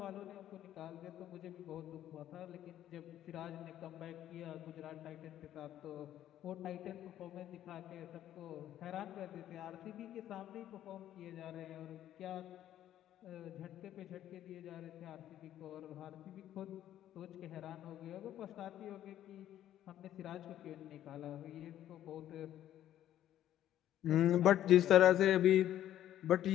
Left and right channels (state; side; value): quieter; right; 11.9 dB